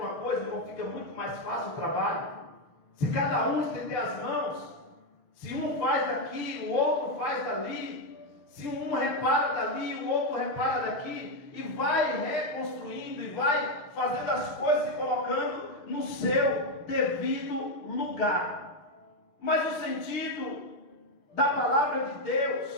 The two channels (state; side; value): late; right; 6.4 ms